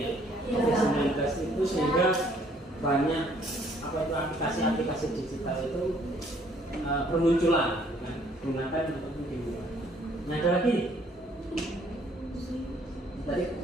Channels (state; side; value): normal; both; correlation 0.63